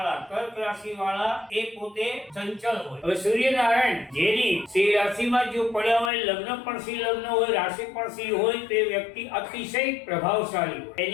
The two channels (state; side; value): drops out; right; at 6.1 s